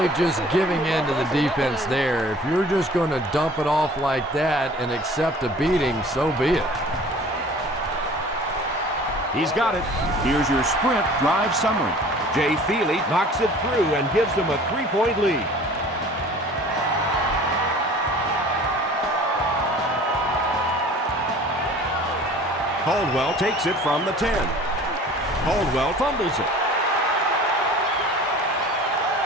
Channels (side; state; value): both; normal; correlation 0.47